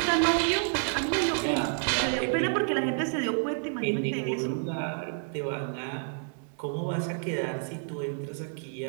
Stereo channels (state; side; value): silent; left; 57 dB below the other